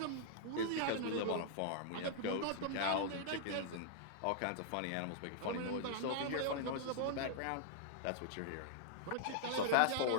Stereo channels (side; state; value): both; different; correlation -0.01